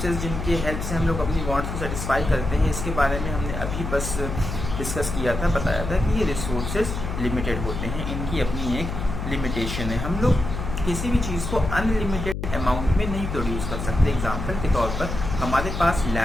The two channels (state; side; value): noise; left; hum, 5 dB below the sound